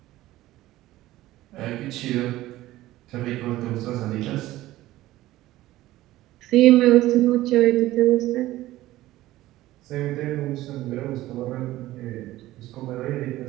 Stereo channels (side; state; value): left; quieter; 16.1 dB